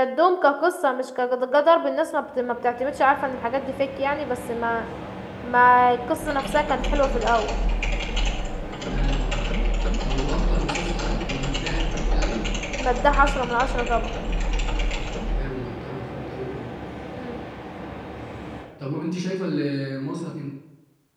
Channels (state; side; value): identical; both; correlation 1.00